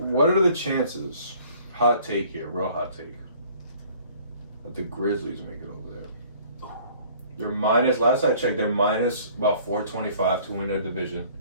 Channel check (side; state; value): both; inverted; correlation -0.54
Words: are the chances? Hot take here, real hot take. That the Grizzlies make it over there. They're minus. Last I checked, they're minus about 425 to win their division.